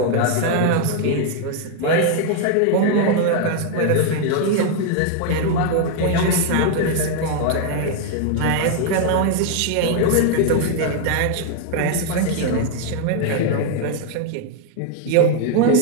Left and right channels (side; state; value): both; different; correlation 0.01